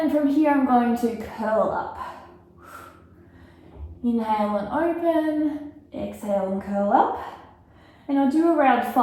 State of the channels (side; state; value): both; identical; correlation 1.00